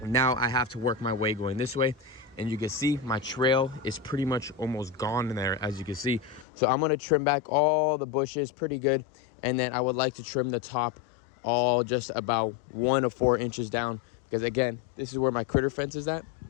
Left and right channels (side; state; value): right; drops out; at 6.5 s